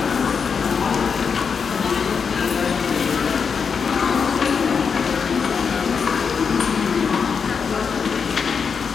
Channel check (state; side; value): quieter; right; 6.0 dB